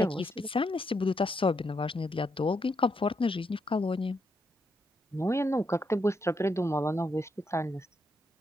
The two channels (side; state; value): both; normal; correlation 0.79